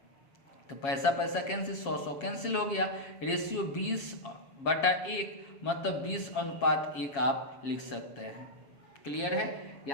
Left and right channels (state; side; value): late; right; 7.3 ms